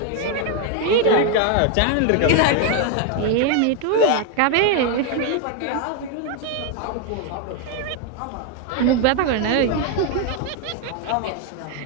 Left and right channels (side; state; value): both; different; correlation 0.01